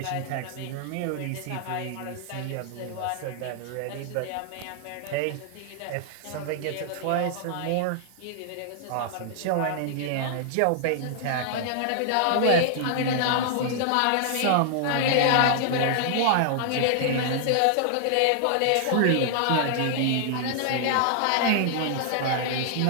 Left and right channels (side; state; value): both; different; correlation -0.01